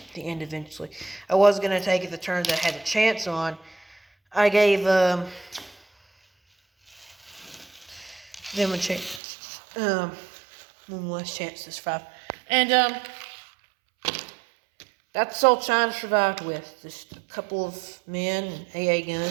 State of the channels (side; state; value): left; drops out; at 9.2 s